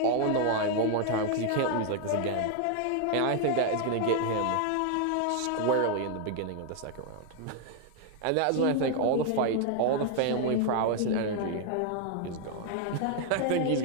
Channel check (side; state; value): both; different; correlation 0.00